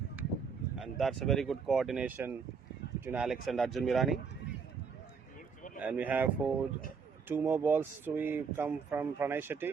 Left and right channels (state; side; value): quieter; left; 5.7 dB